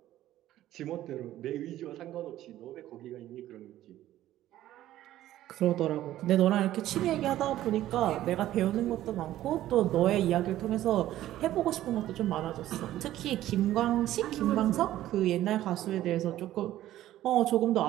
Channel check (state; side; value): quieter; left; 13.8 dB